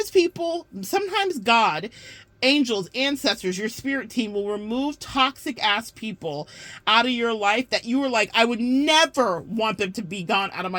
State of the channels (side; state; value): both; identical; correlation 1.00